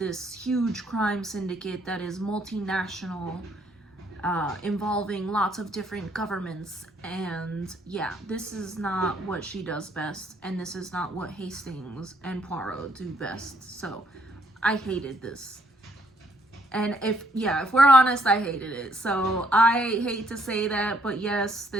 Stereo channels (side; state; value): both; normal; correlation 0.68